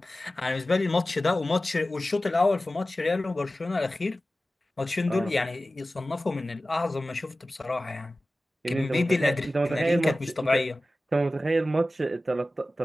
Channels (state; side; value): normal; both; correlation 0.96